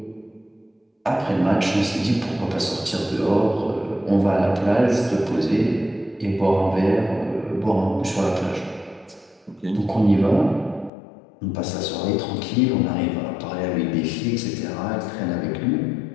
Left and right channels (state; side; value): drops out; right; at 10.9 s